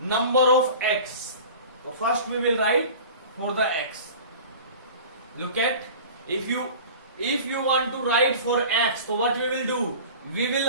of x. So first we will write for the x. Look at, if you want to write for x, so what we will do? We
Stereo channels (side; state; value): both; inverted; correlation -0.39